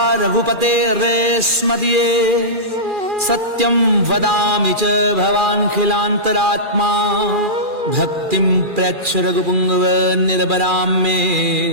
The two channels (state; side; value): late; left; 2.4 ms